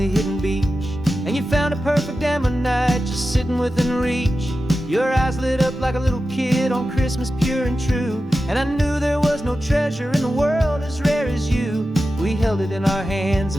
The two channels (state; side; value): normal; both; correlation 0.92